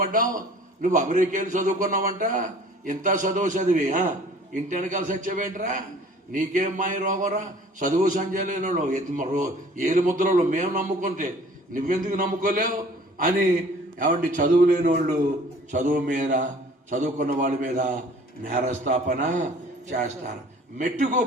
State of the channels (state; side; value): normal; both; correlation 0.50